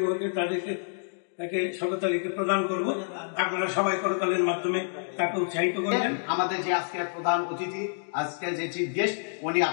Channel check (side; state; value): right; silent; digital silence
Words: তাকে শওকত আলীকে প্রদান করব। আপনারা সবাই করতালের মাধ্যমে তাকে উৎসাহিত করবেন। আমাদের যে আজকের প্রধান অতিথি, আজকের যে চিফ গেস্ট, উনি